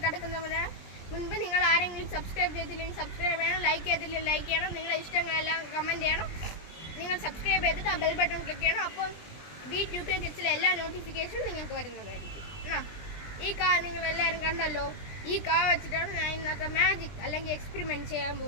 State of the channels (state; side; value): late; right; 20 ms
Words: കിടക്കുന്നതിന് മുൻപ് നിങ്ങൾ ആരെങ്കിലും സബ്സ്ക്രൈബ് ചെയ്തില്ലെങ്കിൽ സബ്സ്ക്രൈബ് ചെയ്യണം, ലൈക്ക് ചെയ്തില്ലെങ്കിൽ ലൈക്ക് ചെയ്യണം, നിങ്ങളുടെ ഇഷ്ടങ്ങളെല്ലാം കമൻറ്റ് ചെയ്യണം. നിങ്ങൾ സബ്സ്ക്രൈബ് ചെയ്തിട്ട് ആ ബെൽ ബട്ടൺ ക്ലിക്ക് ചെയ്യണം. അപ്പോൾ V2K കിഡ്സിലെ എല്ലാ നോട്ടിഫിക്കേഷനും നിങ്ങൾക്ക് വരുന്നതായിരിക്കും. ഈ നിങ്ങളെല്ലാവരും കണ്ടല്ലോ. ഈ വെച്ചിട്ടാണ് ഞാൻ ഇന്നത്തെ മാജിക് അല്ലെങ്കിൽ എക്സ്പെരിമെൻറ്റ് ചെയ്യാൻ